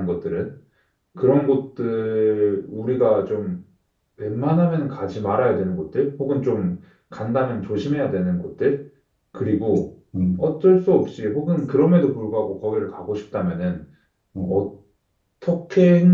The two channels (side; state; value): both; identical; correlation 1.00